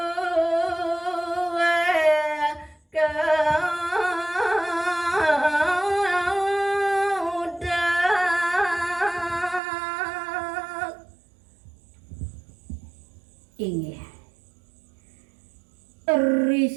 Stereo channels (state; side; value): drops out; left; at 9.6 s